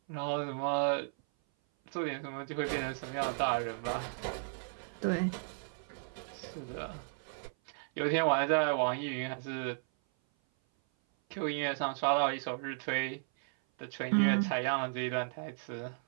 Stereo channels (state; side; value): silent; left; 55 dB below the other